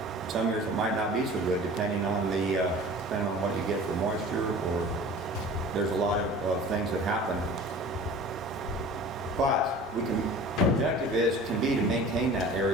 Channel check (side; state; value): both; normal; correlation 0.42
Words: Some years it might not be so good, depending on what you get for moisture, or there's a lot of things that happen. But our objective can be to maintain that